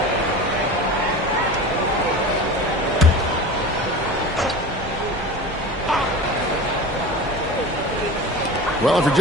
Well, if you're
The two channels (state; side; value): normal; both; correlation 0.33